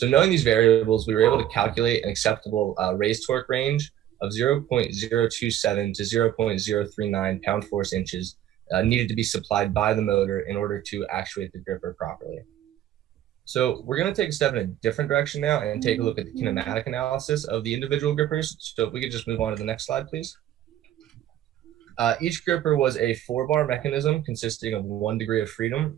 knowing these variables, we were able to calculate an acceptable raised torque range of 0.027 to 0.039 pound force inches needed to be supplied by the motor in order to actuate the gripper properly. So we're going to take a step in a different direction now and take a look at the kinematic analysis of the individual grippers. So if we could just move on to the next slide, please. Each gripper was a 4-bar mechanism consisting of 1 degree of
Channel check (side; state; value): left; quieter; 12.0 dB